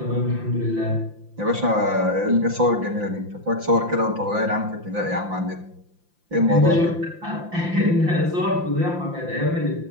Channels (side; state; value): left; late; 5.8 ms